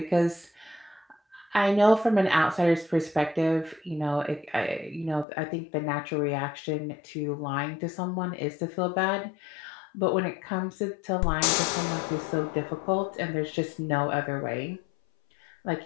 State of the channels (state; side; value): drops out; right; at 5.2 s